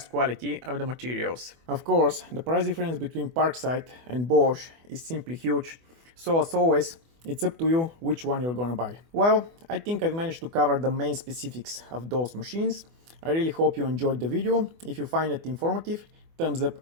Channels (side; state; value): left; late; 24 ms